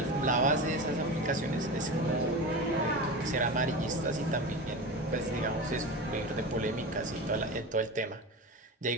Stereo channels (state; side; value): normal; both; correlation 0.26